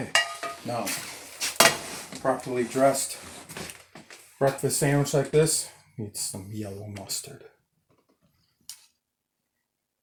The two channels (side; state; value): both; identical; correlation 1.00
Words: now properly dressed breakfast sandwich like this needs some yellow mustard.